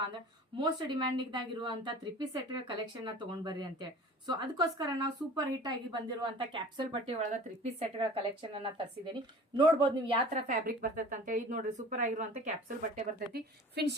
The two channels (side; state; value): both; normal; correlation 0.43